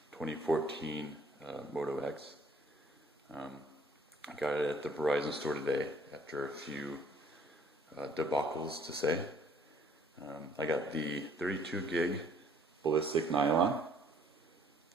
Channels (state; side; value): normal; both; correlation 0.59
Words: 2014 Moto X. I got it at the Verizon store today after a few debacles to say. I got the 32 gig ballistic nylon.